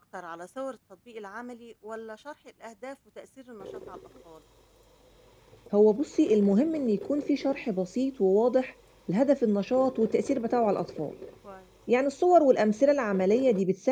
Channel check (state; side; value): identical; both; correlation 1.00